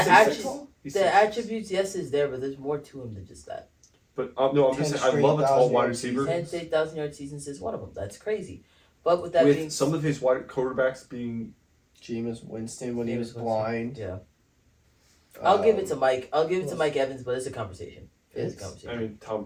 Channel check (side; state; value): both; identical; correlation 1.00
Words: attributes- He's the 6'6". attributes. Yes, is there, but there's more to him than just that. But no, I'm just 10 saying I love a tall 1,000 wide yard receiver. season. 10 to 8,000-yard seasons is one of them. That's crazy. But with that With being some of his wide quarterbacks being Jameis Winston when he Jameis was Winston. blind. yeah, I'll give it to Um, Mike. I'll give it to who Mike Evans, but it's a conversation. It's a It's- conversation. I mean Tom